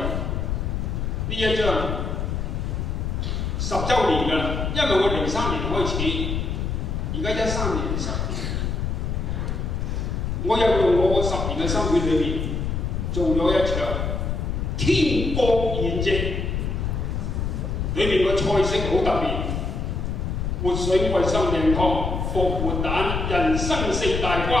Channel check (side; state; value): left; noise; rumble, 1 dB below the sound